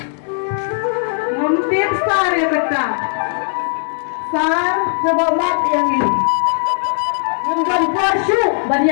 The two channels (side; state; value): right; silent; digital silence